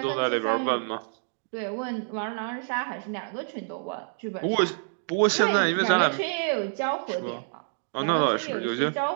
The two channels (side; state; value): left; silent; digital silence